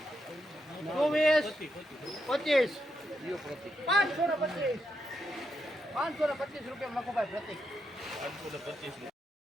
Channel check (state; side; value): normal; both; correlation 0.82